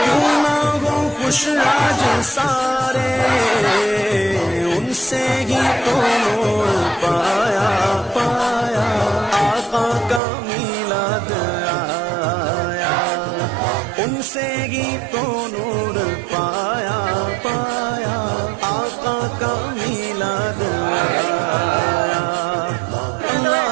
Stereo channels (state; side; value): drops out; left; at 10.2 s